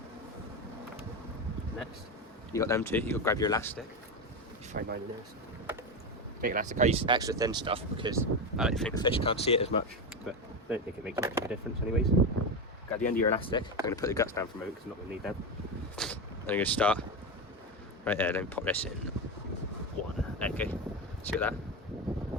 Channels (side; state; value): both; normal; correlation 0.15